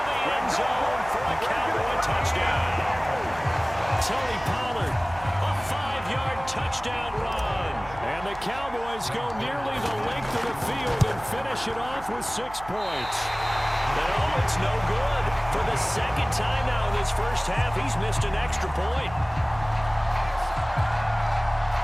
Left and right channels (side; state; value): right; noise; hum, 17 dB below the sound